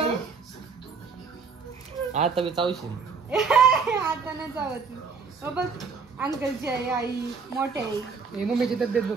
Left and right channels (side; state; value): left; quieter; 5.2 dB